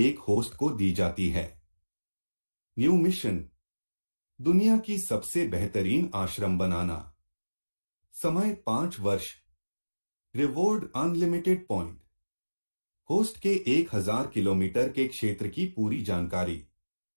host को दी जाती है। न्यू मिशन, दुनिया की सबसे बेहतरीन आश्रम बनाना। समय 5 वर्ष। Reward unlimited point. होस्ट के 1000 किलोमीटर के क्षेत्र की पूरी जानकारी।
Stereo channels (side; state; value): both; inverted; correlation -1.00